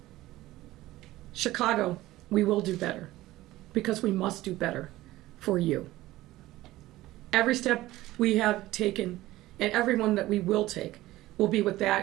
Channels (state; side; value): quieter; left; 16.7 dB